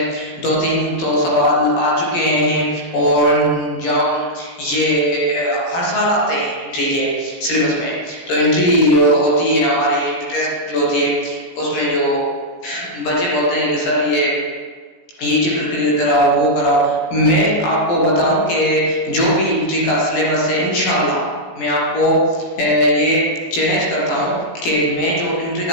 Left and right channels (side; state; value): right; late; 17 ms